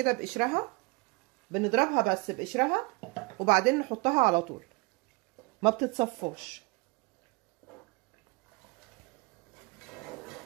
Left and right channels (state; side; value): quieter; left; 27.6 dB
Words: بقشرها، بنضربها بس بقشرها وبعدين نحطها على طول، ما بتتصفاش.